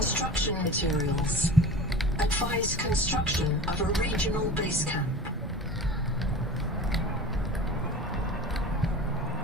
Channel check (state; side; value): normal; both; correlation 0.36